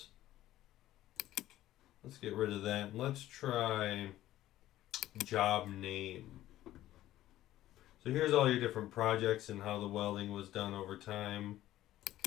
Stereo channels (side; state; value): right; quieter; 14.3 dB